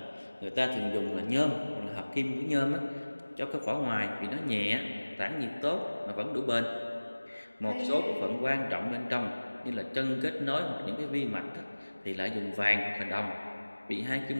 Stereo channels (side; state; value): both; inverted; correlation -1.00